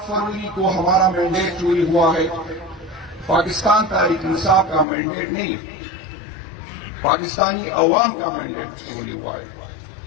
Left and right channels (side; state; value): right; drops out; at 4.9 s